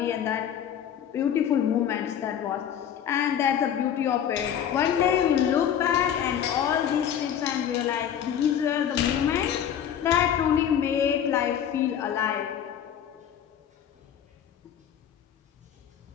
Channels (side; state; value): right; quieter; 9.3 dB